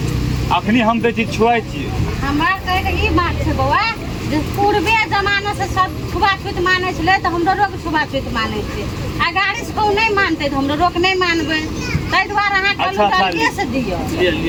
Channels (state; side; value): identical; both; correlation 1.00